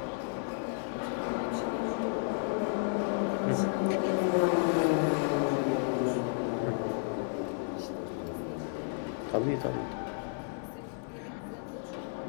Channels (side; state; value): right; silent; 56 dB below the other